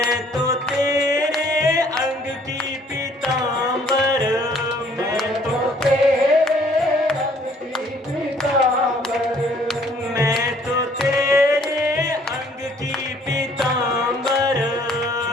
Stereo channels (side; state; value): both; normal; correlation 0.60